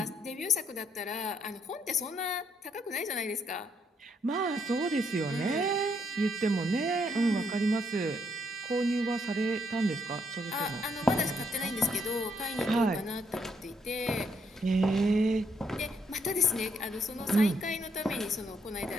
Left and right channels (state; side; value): normal; both; correlation 0.73